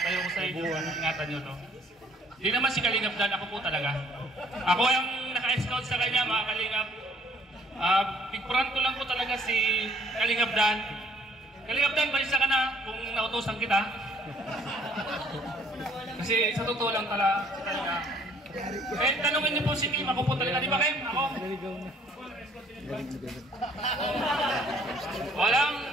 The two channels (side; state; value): both; normal; correlation 0.61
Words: ko sa inyo, ingatan nyo to. Hindi naman si Kalingap Dan, ako po talaga. Ako yung naka-scout sa kanya, mga Kalingap. Pigpuran ko lang po talaga si Kalingap Dan. Kalingap Dan, balisa ka na kung nautosan kita. Kasi sa totoo lang talaga. Eh, tanungin niyo po si Kim. Ako po talaga. Di ba, Kim? Ako? Walang...